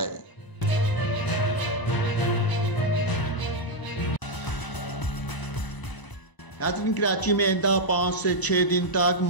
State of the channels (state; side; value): late; right; 1.0 ms